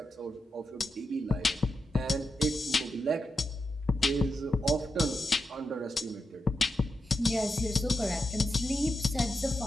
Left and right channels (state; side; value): normal; both; correlation 0.87